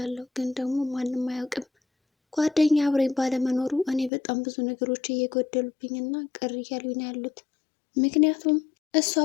ግን ደግሞ ማንም አያውቅም። ጓደኛ አብረኝ ባለመኖሩ እኔ በጣም ብዙ ነገሮች እየጎደሉብኝ እና ቅር እያሉኝ ነው ያሉት። ምክንያቱም እሱ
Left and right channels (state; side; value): drops out; right; at 4.1 s